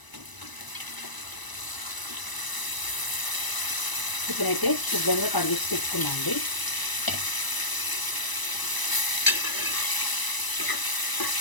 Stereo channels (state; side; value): late; right; 1.0 ms